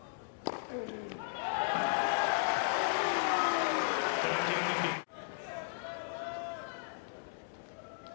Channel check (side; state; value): right; silent; digital silence